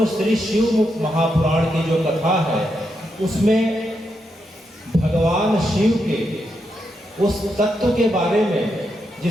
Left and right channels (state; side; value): normal; both; correlation 0.83